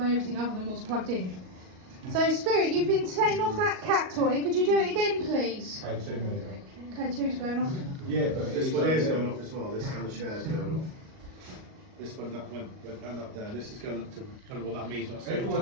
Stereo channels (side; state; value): left; late; 38 ms